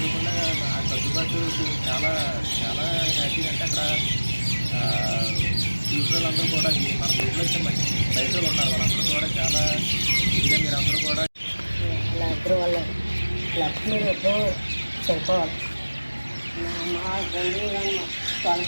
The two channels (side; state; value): both; inverted; correlation -1.00